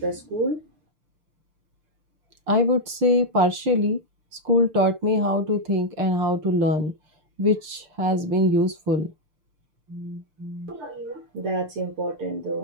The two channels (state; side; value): late; left; 6.7 ms